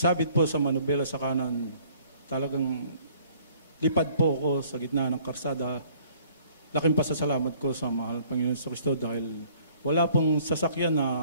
po sa manubela sa kanan, talagang lipad po ako sa gitna ng karsada. Laking pasasalamat ko sa mahal Panginoon sa Kristo dahil wala pong sasakyan na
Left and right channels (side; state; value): both; inverted; correlation -0.58